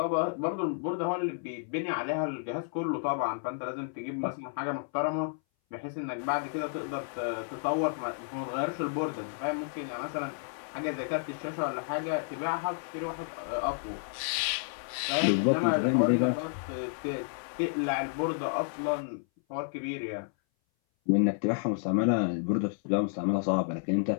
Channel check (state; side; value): silent; right; 57 dB below the other